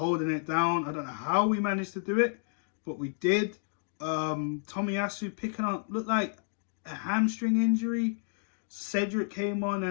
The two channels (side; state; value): right; silent; 57 dB below the other